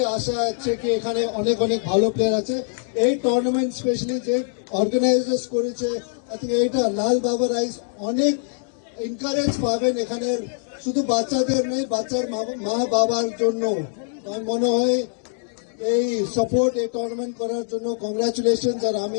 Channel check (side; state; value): right; silent; 63 dB below the other